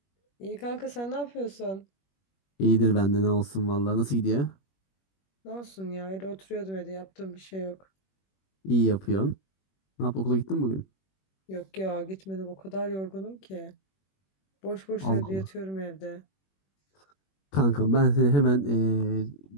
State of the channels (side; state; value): right; late; 21 ms